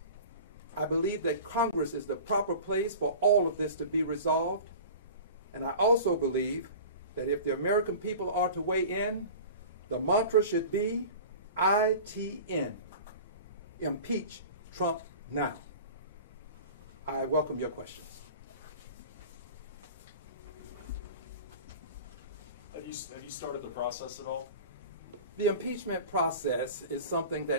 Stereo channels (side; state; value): both; inverted; correlation -0.38